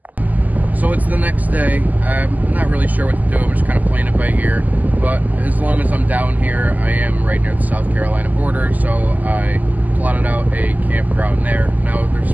So it's the next day. I'm not really sure what to do. I'm just kind of playing it by ear. But as long as I'm down here, I am right near the South Carolina border, so I plotted out a campground there. Now, there's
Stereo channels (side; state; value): left; late; 0.081 ms